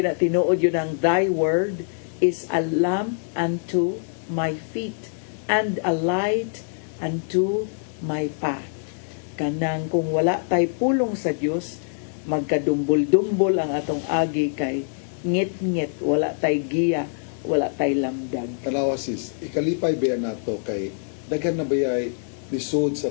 tinuod yun ang thy word is a lamp unto my feet and a light unto my path. Kanang kung wala tay pulong sa Dios, magkadumbol-dumbol ang atong agi, kay ngit-ngit, wala tay giya, wala tay lamdag. Kanawa sis, ikalipay ba nato kay daghan na bayay lisod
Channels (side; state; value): right; silent; digital silence